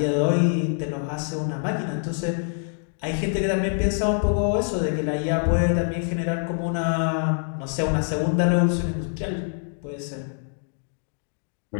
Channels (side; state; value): right; silent; digital silence